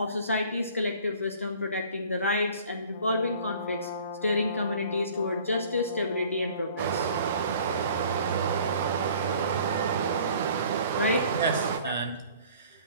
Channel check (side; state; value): both; inverted; correlation -0.51